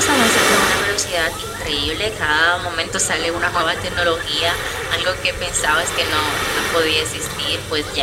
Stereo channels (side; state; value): both; identical; correlation 1.00